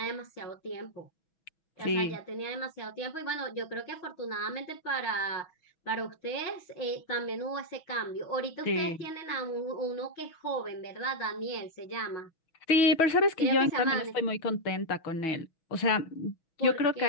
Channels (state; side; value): late; right; 6.2 ms